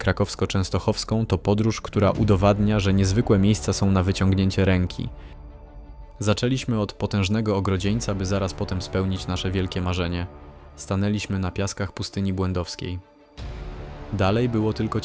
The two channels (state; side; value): identical; both; correlation 1.00